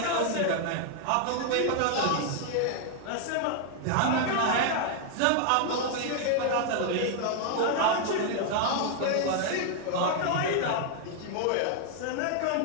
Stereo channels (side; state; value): both; different; correlation 0.00